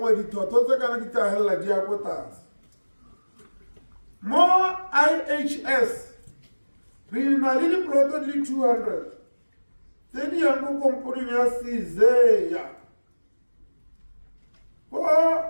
dithotho tse kana di tagela di ya go tlase mo IHS re na le diploto di 200 tse di yang go komporeng ya Sezeya go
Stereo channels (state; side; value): inverted; both; correlation -1.00